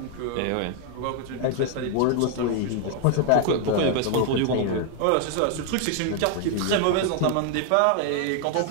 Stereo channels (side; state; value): both; different; correlation 0.00